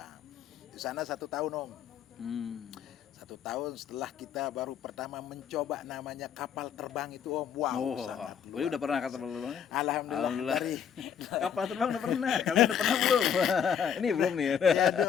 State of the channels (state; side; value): quieter; right; 8.1 dB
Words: Di sana 1 tahun Om. 1 tahun setelah kita baru pertama mencoba namanya kapal terbang itu Om. Wow, sangat luar. Udah pernah kapal terbang? Alhamdulillah. Dari Kapal terbang udah pernah. Kalian udah pernah belum? Ini belum nih. ya,